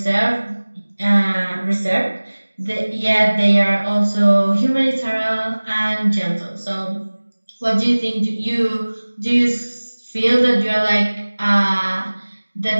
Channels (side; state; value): both; inverted; correlation -1.00